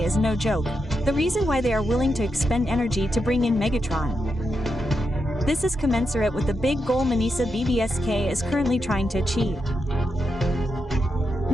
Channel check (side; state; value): both; normal; correlation 0.85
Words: is no joke, the reason why they are willing to expend energy to bring in Megatron. This is commensurate with the big goal Manisa BBSK is currently trying to achieve.